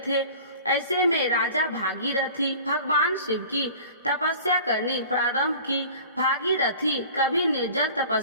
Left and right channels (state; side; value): inverted; both; correlation -0.43